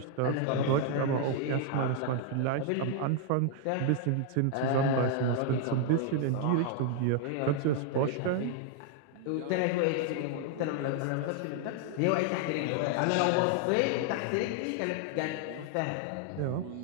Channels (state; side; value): different; both; correlation 0.00